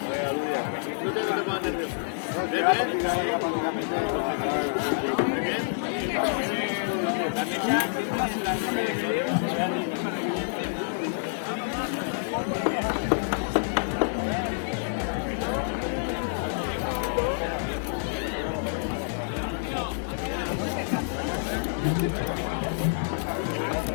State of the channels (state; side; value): silent; right; 57 dB below the other